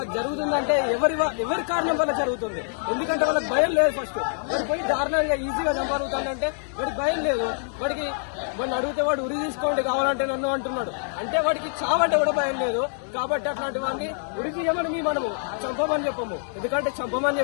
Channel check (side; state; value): right; silent; digital silence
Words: జరుగుతుందంటే ఎవరి కారణం వల్ల జరుగుతుంది? ఎందుకంటే వాళ్ళకి భయం లేదు. ఫస్ట్ వాడు పోయి దారుణంగా ఈజీగా చంపగలుగుతాడంటే వాడికి భయం లేదు. వాడిని అడిగితే వాడు ఉరి తీసుకోండి కావాలంటే నన్ను అంటున్నాడు. అంటే వాడికి చావంటే కూడా భయం లేదు. కాబట్టి అట్లాంటి వాడిని ఉరి తీయమని మనము చంపమని చెప్పము. ఎందుకంటే చంపమని